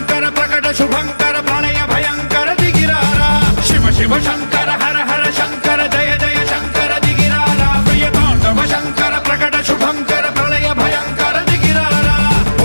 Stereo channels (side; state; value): both; inverted; correlation -1.00